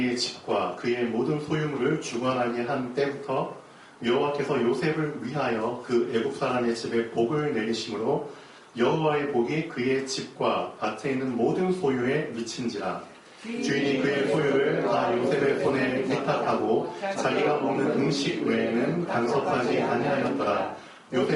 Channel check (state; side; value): identical; both; correlation 1.00